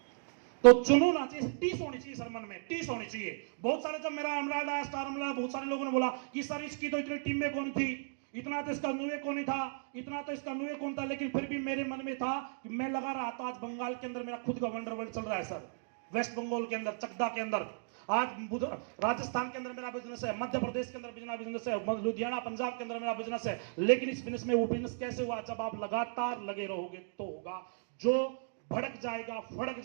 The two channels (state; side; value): silent; left; digital silence